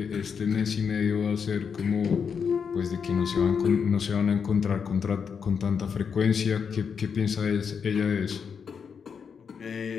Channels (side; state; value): right; quieter; 6.5 dB